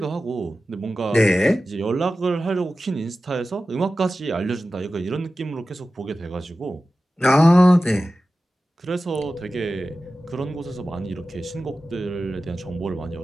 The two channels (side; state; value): both; normal; correlation 0.94